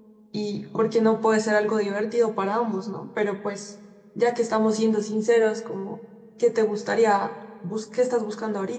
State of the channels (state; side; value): identical; both; correlation 1.00